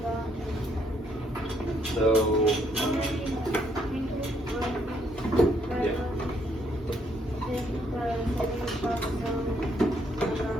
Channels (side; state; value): both; normal; correlation 0.71